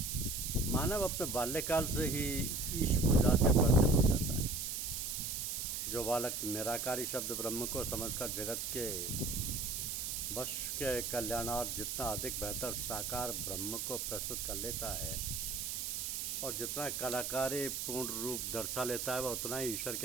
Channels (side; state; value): right; noise; hiss, 3 dB below the sound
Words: मानव अपने बाल्यकाल से ही ईश पूजा से परिचित हो जाता है। जो बालक निराकारी शब्द ब्रह्म को समझकर जगत के वश के कल्याणार्थ जितना अधिक बेहतर साकार ब्रह्म को प्रस्तुत कर लेता है और जितना कलाकारी पूर्ण रूप दर्शा लेता है, वह उतना ही ईश्वर